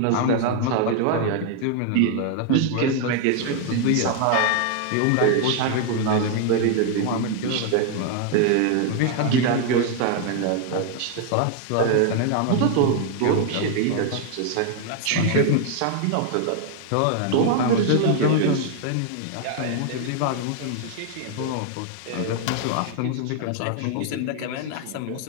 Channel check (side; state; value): both; different; correlation 0.00